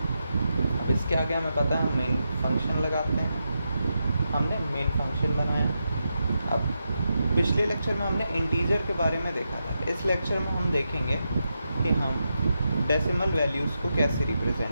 अब इसके आगे हमें पता है हम मेन फंक्शन लगाते हैं, हमने मेन फंक्शन बनाया। अब पिछले लेक्चर में हमने इंटीजर के बारे में देखा था। इस लेक्चर में हम देखेंगे कि हम डेसिमल वैल्यूज़ को कैसे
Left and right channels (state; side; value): inverted; both; correlation -0.86